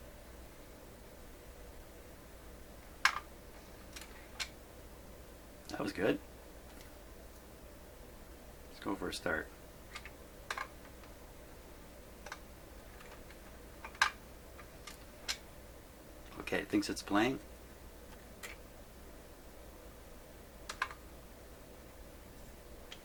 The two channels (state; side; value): identical; both; correlation 1.00